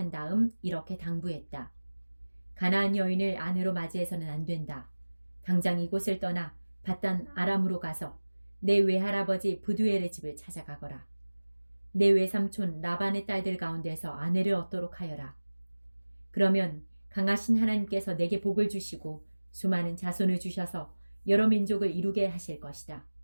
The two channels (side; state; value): both; inverted; correlation -1.00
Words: 다음 이렇게 당부했다. 가나안 여인을 아내로 맞이해서는 안 된다. 당장 이곳을 떠나 밧단 아람으로 가서 내 외할아버지 부두엘의 집을 찾아가거라. 내 외삼촌 라반의 딸들 가운데서 아내를 얻도록 하여라. 그러면 강하신 하나님께서 내게 복을 주시고 수많은 자손을 주셔서 여러 민족을 이루게 하실 것이다.